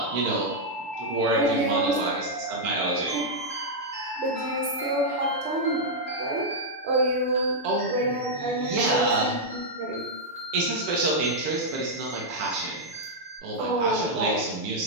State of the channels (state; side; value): late; left; 6.9 ms